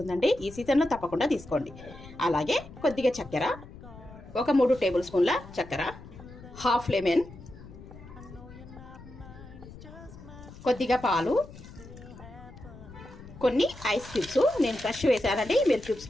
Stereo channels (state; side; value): noise; left; rumble, 17 dB below the sound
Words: ఈ సీజన్లో తప్పకుండా తీసుకోండి. అలాగే కొద్దిగా చక్కెర, ఒక 3 టేబుల్ స్పూన్ల చక్కెర, హాఫ్ లెమన్, కొద్దిగా పాలు, కొన్ని ఐస్ క్యూబ్స్, నేను ఫ్రెష్ వేసానండి, మీరు క్యూబ్స్